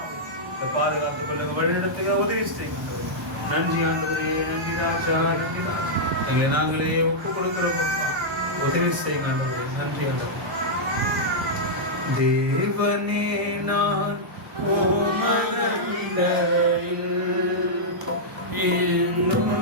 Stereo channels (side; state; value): both; normal; correlation -0.08